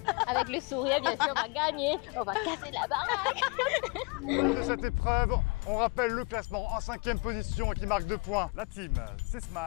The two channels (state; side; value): quieter; right; 30.2 dB